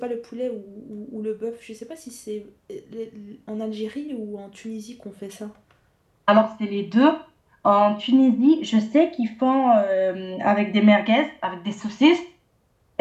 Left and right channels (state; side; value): identical; both; correlation 1.00